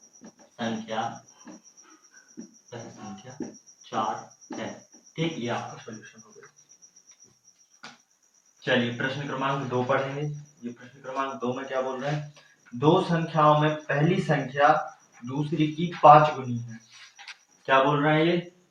संख्या 4 है। ठीक, ये आपका सॉल्यूशन हो गया। चलिए प्रश्न क्रमांक 2 पढ़ेंगे। ये प्रश्न क्रमांक 2 में क्या बोल रहे हैं, दो संख्याओं में पहली संख्या दूसरी की 5 गुनी है। क्या बोल रहे हैं ये,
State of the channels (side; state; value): both; identical; correlation 1.00